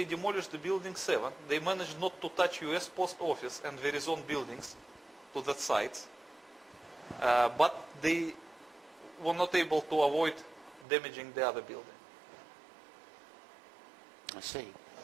demolished the building 7, they managed not to touch US Post Office and Verizon buildings to that site, but they were not able to avoid damaging the other building. I see.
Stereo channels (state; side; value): drops out; left; at 10.9 s